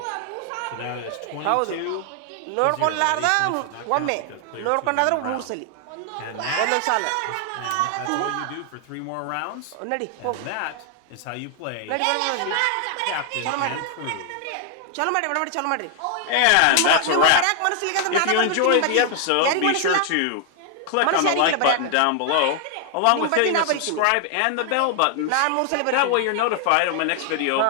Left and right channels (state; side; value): different; both; correlation 0.00